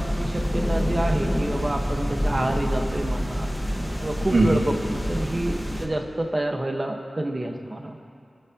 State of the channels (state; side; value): normal; both; correlation 0.97